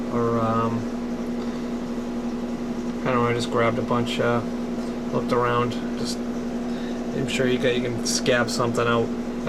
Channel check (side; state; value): both; identical; correlation 1.00